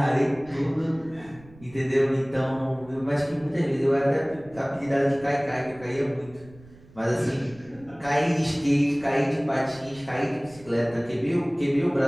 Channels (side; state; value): right; noise; rumble, 23 dB below the sound